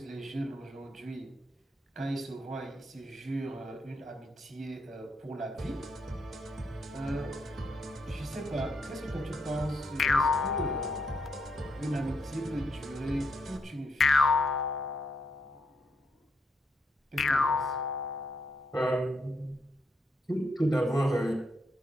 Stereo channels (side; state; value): both; normal; correlation 0.77